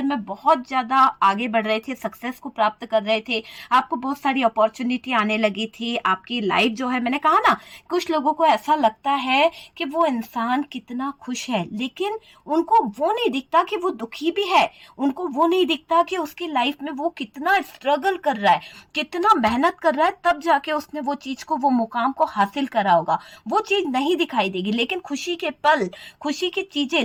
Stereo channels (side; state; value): both; identical; correlation 1.00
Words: में बहुत ज्यादा आगे बढ़ रहे थे, सक्सेस को प्राप्त कर रहे थे, आपको बहुत सारी अपॉर्चुनिटी आने लगी थी, आपकी लाइफ जो है, मैंने कहा ना, कुछ लोगों को ऐसा लगता है कि वो इंसान कितना खुश है, लेकिन उनको वो नहीं दिखता कि वो दुखी भी है, उनको वो नहीं दिखता कि उसकी लाइफ में वो कितना स्ट्रगल कर रहा है, कितना मेहनत कर रहा है, तब जाके उसने वो चीज को, वो मुकाम को हासिल करा होगा। वो चीज नहीं दिखाई देगी, लेकिन खुशी के पल, खुशी की चीजें